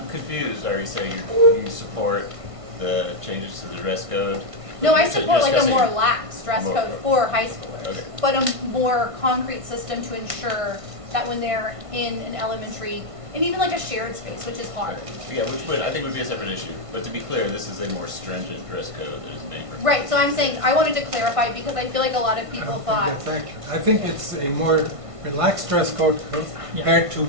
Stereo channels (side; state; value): left; late; 1.5 ms